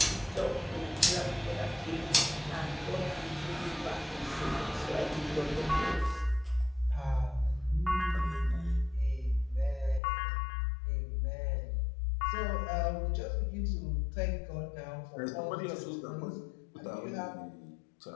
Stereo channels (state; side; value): drops out; right; at 10.0 s